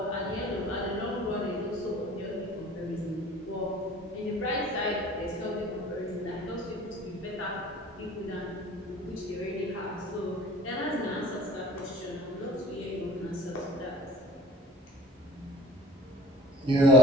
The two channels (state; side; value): normal; both; correlation 0.47